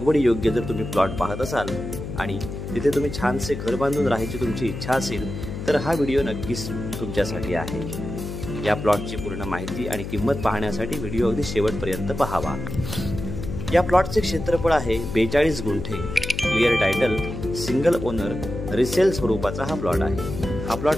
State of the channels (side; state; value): left; noise; hum, 7 dB below the sound